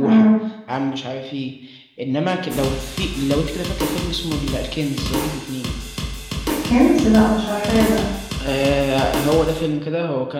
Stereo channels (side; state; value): both; identical; correlation 1.00